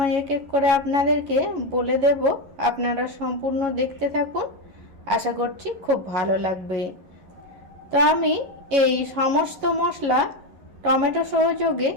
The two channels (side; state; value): left; late; 11 ms